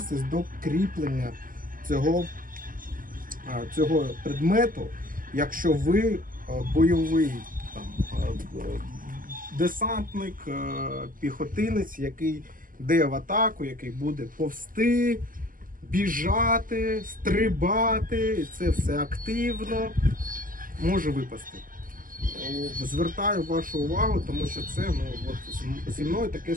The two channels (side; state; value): left; late; 0.41 ms